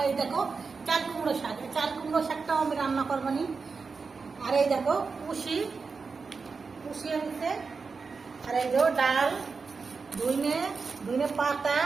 এই দেখো চাল কুমড়ো শাক, চাল কুমড়ো শাকটাও আমি রান্না করবো নি। আর এই দেখো পুষি আনছে। আর এই যে ডাল, ধুইনে পাতা,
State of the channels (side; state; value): left; quieter; 4.8 dB